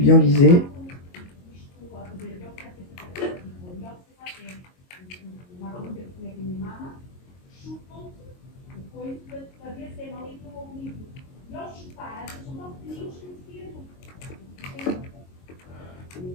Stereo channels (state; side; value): late; right; 22 ms